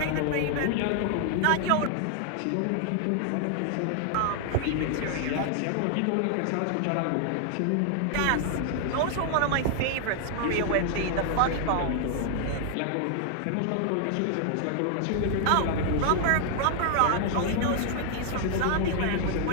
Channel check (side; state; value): both; different; correlation 0.00